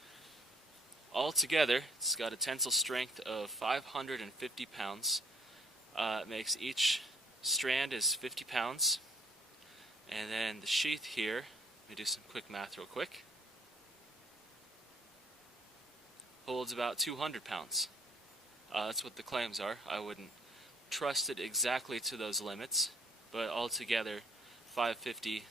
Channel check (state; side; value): normal; both; correlation 0.61